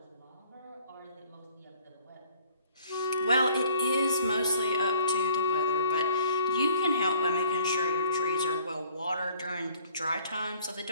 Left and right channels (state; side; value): inverted; both; correlation -0.56